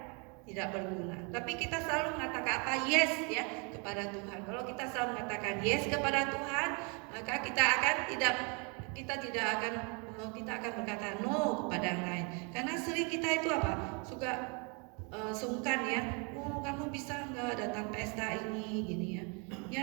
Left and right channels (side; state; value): left; quieter; 33.6 dB